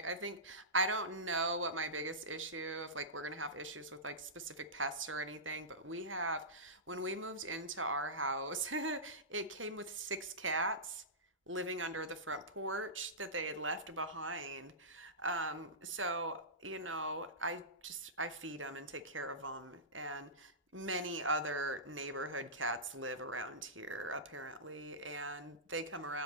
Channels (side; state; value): both; normal; correlation -0.19